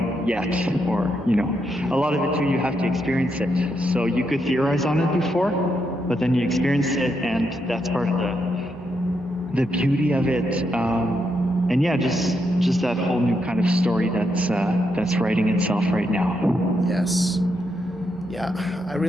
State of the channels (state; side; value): normal; both; correlation 0.81